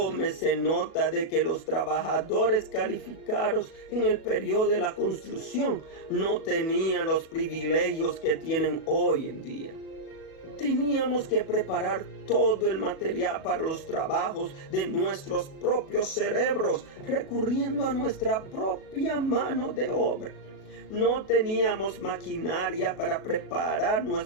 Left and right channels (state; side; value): late; right; 37 ms